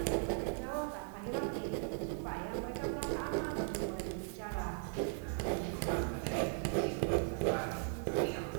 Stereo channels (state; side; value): silent; left; 52 dB below the other